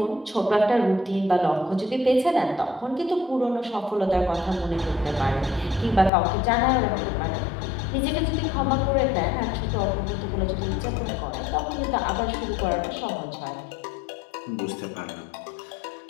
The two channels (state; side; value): drops out; right; at 6.1 s